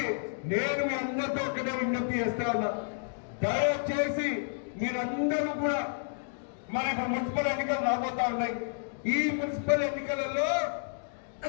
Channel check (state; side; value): silent; right; digital silence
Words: నేను మీ అందరితో ఒక్కటే విజ్ఞప్తి చేస్తా ఉన్నా, దయచేసి మీరందరూ కూడా మరి ఇప్పుడు మున్సిపల్ ఎన్నికలు రాబోతా ఉన్నాయి. ఈ మున్సిపల్ ఎన్నికలలో